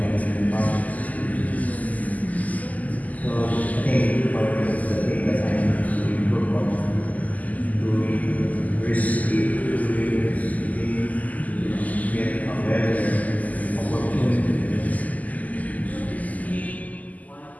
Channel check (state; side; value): late; right; 0.077 ms